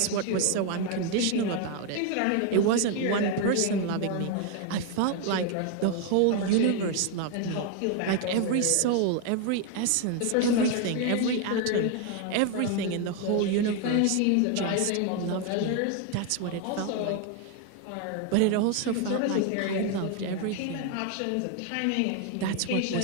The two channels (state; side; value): different; both; correlation 0.01